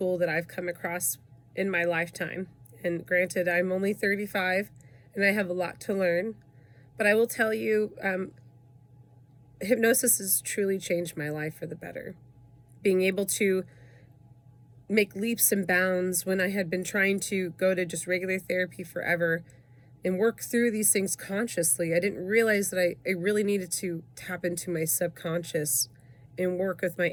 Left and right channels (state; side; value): identical; both; correlation 1.00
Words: that I've come across in my lifetime. And granted, I'm only 35 and I have a lot to learn, but I will tell you, hypnosis has truly changed my life for the better. Being able to make leaps and bounds when I had been trying to go to just regular therapy forever and work through these things consciously. I didn't realize that I really needed to tap into my subconscious and work with my